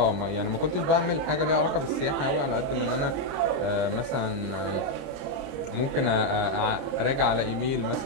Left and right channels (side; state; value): left; late; 30 ms